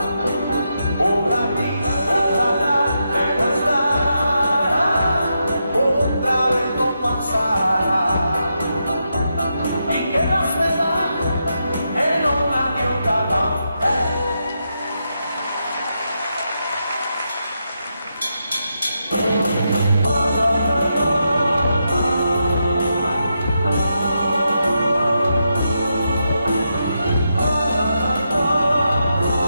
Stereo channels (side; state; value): both; inverted; correlation -0.84